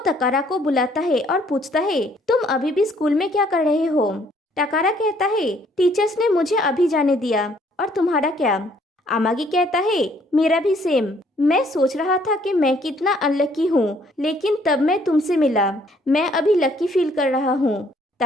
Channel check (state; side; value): normal; both; correlation 0.64